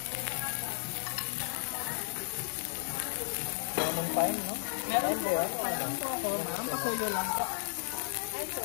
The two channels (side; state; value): right; silent; digital silence